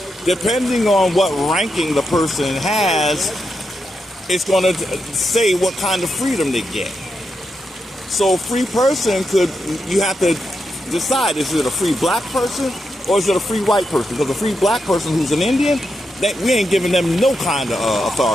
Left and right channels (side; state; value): both; normal; correlation 0.85